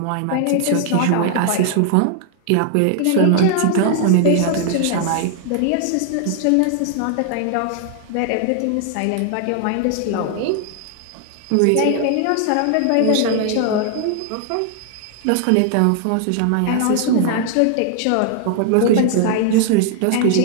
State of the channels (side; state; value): both; different; correlation 0.00